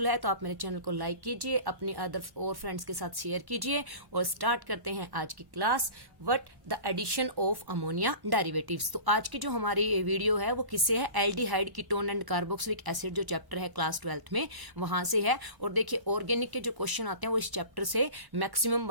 है, तो आप मेरे चैनल को लाइक कीजिए, अपने अदर और फ्रेंड्स के साथ शेयर कीजिए। और स्टार्ट करते हैं आज की class, what the addition of ammonia derivatives. तो आज की जो हमारी वीडियो है वो किससे है? Aldehyde, ketone and carboxylic acid जो चैप्टर है क्लास 12th में, वहां से है। और देखिए, ऑर्गेनिक के जो क्वेश्चन आते हैं वो इस चैप्टर से मैक्सिमम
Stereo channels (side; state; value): left; late; 1.1 ms